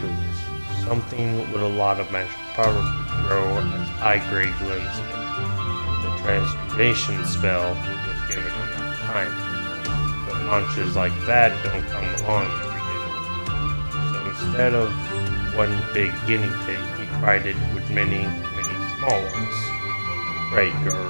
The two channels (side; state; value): both; inverted; correlation -1.00